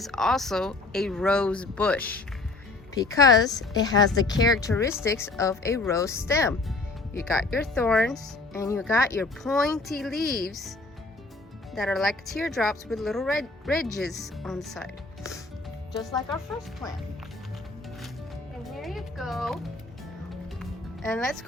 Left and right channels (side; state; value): right; quieter; 3.4 dB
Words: also a rose bush because it has the characteristics of a rose stem. You got your thorns and you got your pointy leaves that are like teardrops with little red ridges on the side, just like our first plant. And here you go. And let's